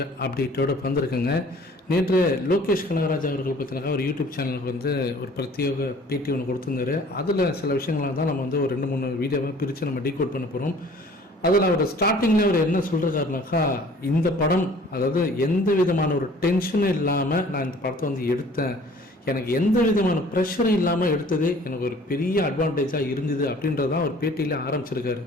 அப்டேட்டோடு வந்திருக்குங்க. நேற்று லோகேஷ் கனகராஜ் அவர்கள் பார்த்தீங்கன்னா ஒரு யூடியூப் சேனலுக்கு வந்து ஒரு பிரத்யேக பேட்டி ஒன்று கொடுத்துருந்தாரு. அதில் சில விஷயங்களாக தான் நம்ம வந்து ஒரு 2-3 வீடியோவை பிரித்து நம்ம டீகோட் பண்ண போகிறோம். அதில் அவர் ஸ்டார்டிங்கில் அவர் என்ன சொல்கிறாருனாக்கா, இந்த படம் அதாவது எந்த விதமான ஒரு டென்ஷனும் இல்லாமல் நான் இந்த படத்தை வந்து எடுத்தேன், எனக்கு எந்த விதமான ப்ரெஷரும் இல்லாமல் எடுத்ததே எனக்கு ஒரு பெரிய அட்வான்டேஜாக இருந்தது அப்படின்றதான் அவர் பேட்டியில் ஆரம்பிச்சிருக்காரு.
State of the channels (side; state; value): both; normal; correlation 0.51